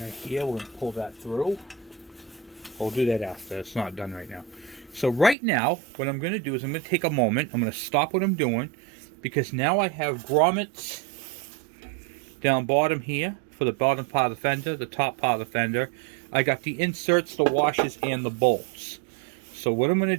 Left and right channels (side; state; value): left; drops out; at 5.4 s